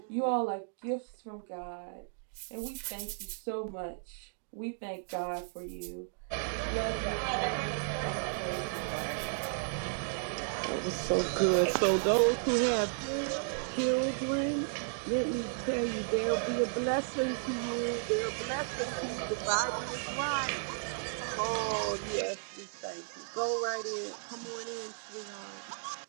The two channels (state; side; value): silent; left; digital silence